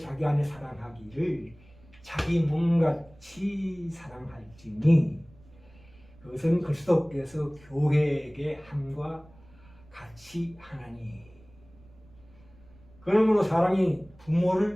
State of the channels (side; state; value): right; noise; rumble, 26 dB below the sound